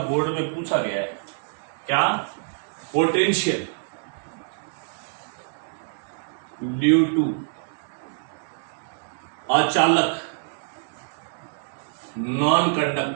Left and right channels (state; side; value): silent; left; digital silence